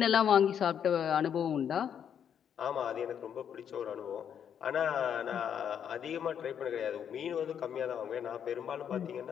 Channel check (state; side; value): quieter; right; 8.5 dB